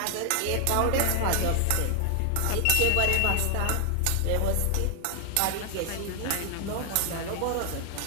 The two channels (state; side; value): different; both; correlation 0.00